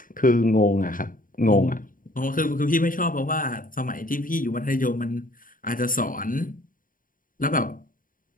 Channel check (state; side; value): late; right; 0.40 ms